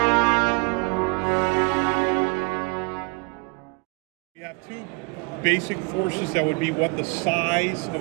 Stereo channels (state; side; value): quieter; left; 30.1 dB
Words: have two basic forces that would be what the size of